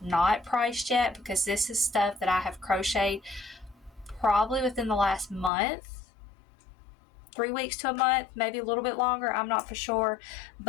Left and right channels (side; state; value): right; drops out; at 5.5 s